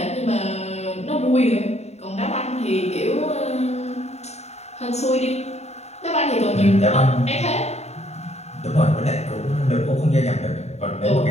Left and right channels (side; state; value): right; late; 0.32 ms